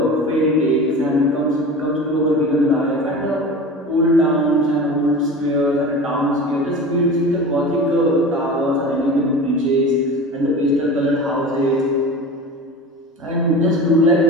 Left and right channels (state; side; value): normal; both; correlation 0.33